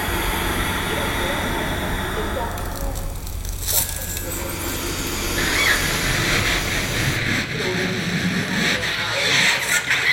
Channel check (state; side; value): identical; both; correlation 1.00